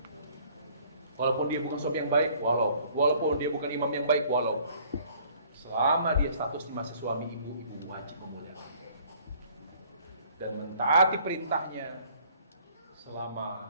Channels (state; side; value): inverted; both; correlation -0.58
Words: dia bukan suami yang baik, walaupun dia bukan imam yang baik, selama dia statusnya masih suami ibu wajib memuliakan dia dan mentaati perintahnya